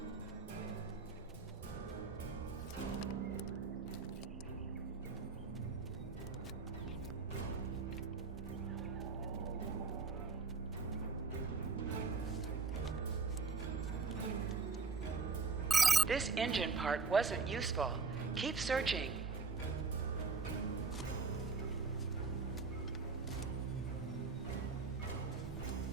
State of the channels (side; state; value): left; quieter; 4.5 dB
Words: This engine part wasn't useful. Keep searching.